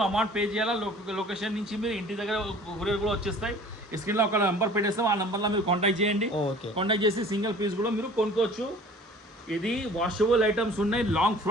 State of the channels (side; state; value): both; normal; correlation 0.47